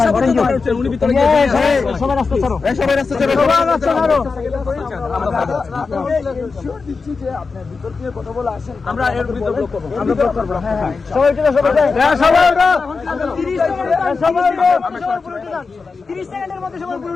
করি উনি ভিতরে গিয়ে সবাই রাস্তা ছাড়ো, সবাই রাস্তা ছাড়ো, সবাই রাস্তা ছাড়ো, আমরা ইনশিওর দিচ্ছি যে আপনি ভিতর দিয়ে কথা বলে আসেন, আমরা এর ভিতর ব্লক করব, আমরা ব্লক করব, হ্যাঁ সবাই চলে সবাই হ্যাঁ সবাই 30 সেকেন্ড সবাই 30 সেকেন্ডের মধ্যে সবাই পুরো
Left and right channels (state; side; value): quieter; right; 4.6 dB